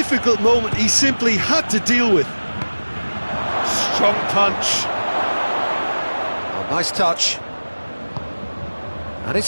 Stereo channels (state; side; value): inverted; both; correlation -1.00